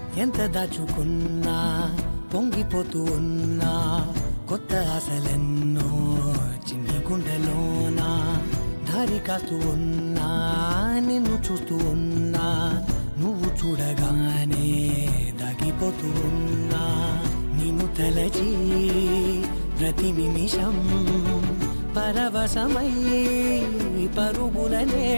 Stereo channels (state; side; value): inverted; both; correlation -1.00